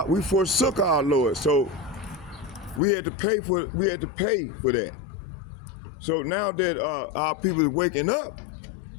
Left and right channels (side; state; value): right; drops out; at 2.8 s